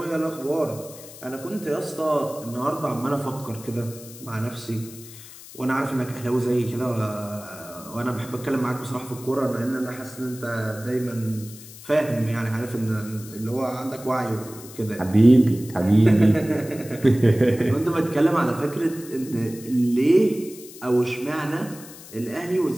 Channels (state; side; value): noise; left; hiss, 17 dB below the sound